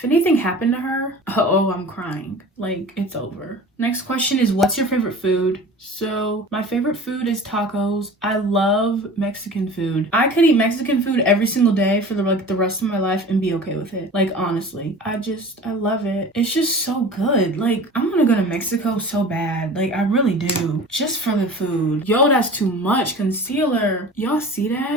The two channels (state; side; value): normal; both; correlation 0.39